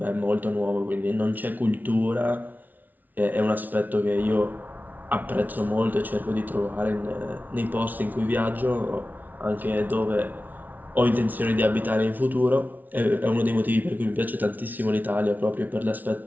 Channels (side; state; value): left; late; 0.081 ms